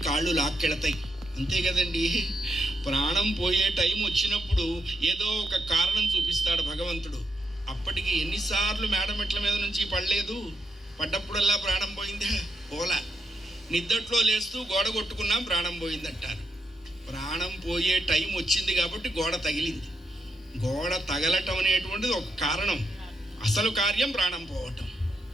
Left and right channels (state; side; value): normal; both; correlation 0.81